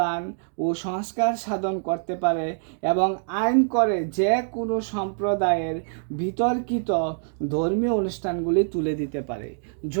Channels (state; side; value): silent; left; digital silence